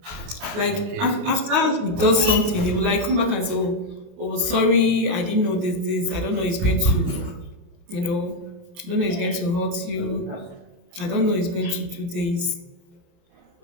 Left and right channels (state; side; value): late; left; 28 ms